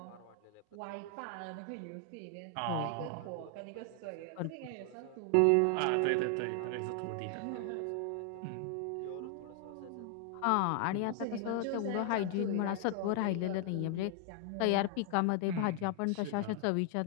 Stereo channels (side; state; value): both; different; correlation 0.00